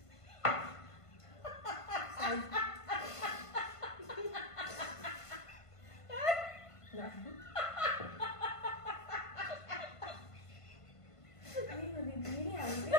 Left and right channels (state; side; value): late; right; 1.5 ms